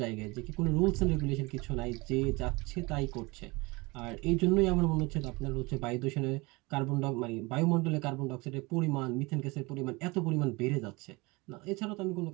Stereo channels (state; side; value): quieter; left; 24.7 dB